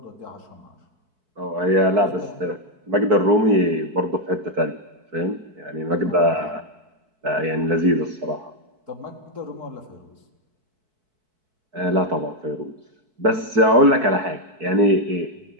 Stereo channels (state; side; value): late; left; 4.6 ms